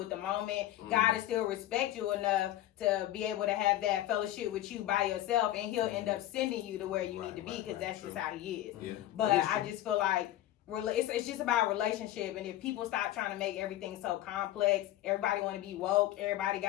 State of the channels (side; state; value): right; quieter; 14.1 dB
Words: at the moment, God will still respect you enough to be able to have that fellowship with you by yourself, and He'll end up sending you to where you need to be because that's just how He is. Yeah. But That is I true. just feel like it's just about relationship, and if people stop trying to make everything so complex, everybody want to be woke, everybody